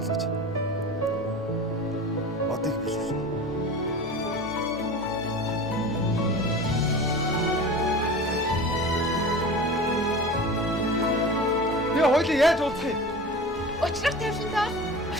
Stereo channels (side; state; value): both; normal; correlation 0.34